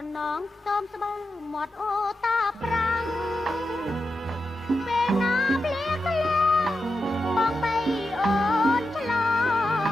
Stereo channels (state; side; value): normal; both; correlation 0.88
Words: ណងខ្ទមស្បើមាត់អូតាប្រាំងពេលណាភ្លៀងធ្លាក់បងបីអូនឆ្ល